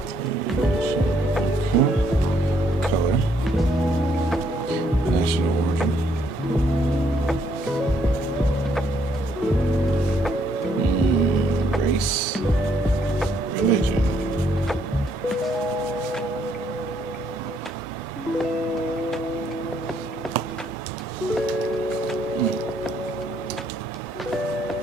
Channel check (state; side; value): normal; both; correlation 0.70